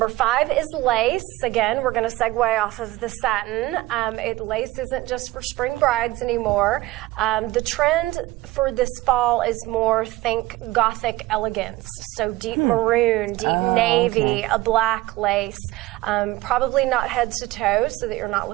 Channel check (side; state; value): left; quieter; 18.2 dB